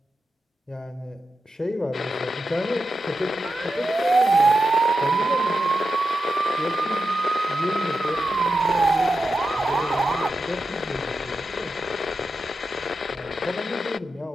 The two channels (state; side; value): normal; both; correlation 0.89